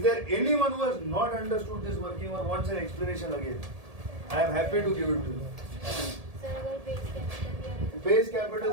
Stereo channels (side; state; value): left; late; 1.7 ms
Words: there anyone who has not understood this working or wants an explanation again? I am happy to give it to you. Sir अगर base capital दिया base capital